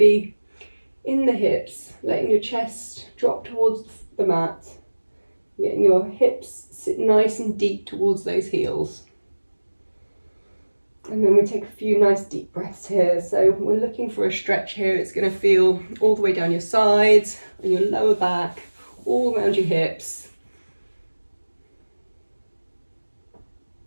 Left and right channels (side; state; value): both; inverted; correlation -1.00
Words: in the hips, letting your chest drop towards the mat, getting your hips sit nice and deep towards those heels. And then we take a few nice deep breaths here. So we're looking for a stretch here. It's going to feel all the way down your sides and your lower back, all around your hips.